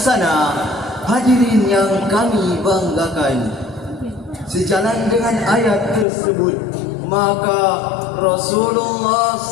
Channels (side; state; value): right; drops out; at 6.1 s